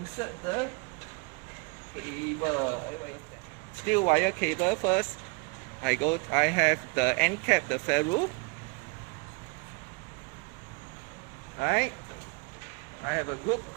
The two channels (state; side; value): quieter; left; 29.7 dB